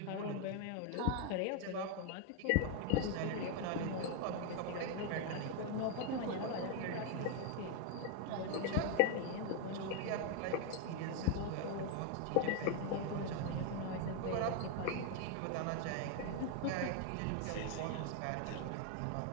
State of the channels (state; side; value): different; both; correlation 0.01